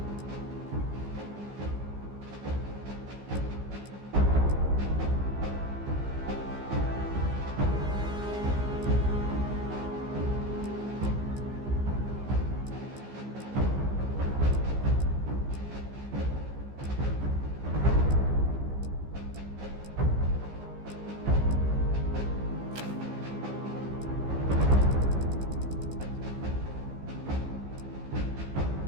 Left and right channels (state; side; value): late; left; 15 ms